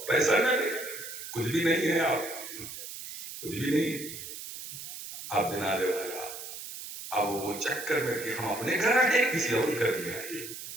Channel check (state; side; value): noise; right; hiss, 10 dB below the sound